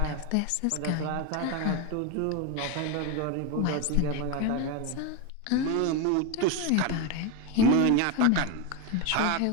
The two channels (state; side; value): different; both; correlation 0.03